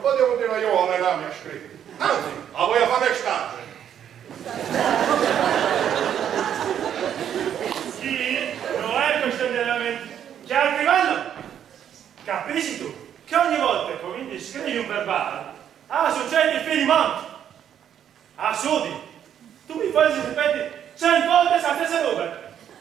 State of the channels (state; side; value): quieter; left; 9.5 dB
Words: potevo dire io alle rame a scrivere. Anzi, la voglio fare stage. Sì, non è questione di allenamento. Che al livello? Capisci tu che ogni volta che cominci a scrivere un verbale, succede il finimento. Sudi, tu mi fai ripeti 100 volte la stessa roba.